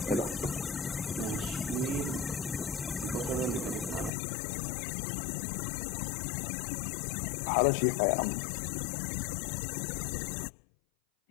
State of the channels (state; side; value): drops out; right; at 4.1 s